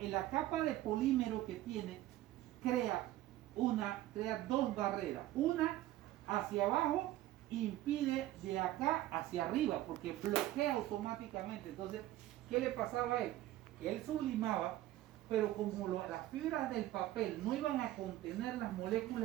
capa de polímero que tiene crea 2 barreras. Una hacia abajo impide de acá hacia arriba porque bloquea automáticamente. Entonces, ¿qué le pasaba a él? Él sublimaba, pero como las fibras del papel no iban a contener las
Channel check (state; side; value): quieter; left; 14.9 dB